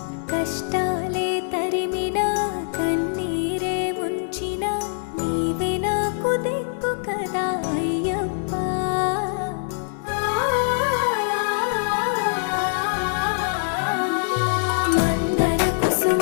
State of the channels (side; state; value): right; silent; 59 dB below the other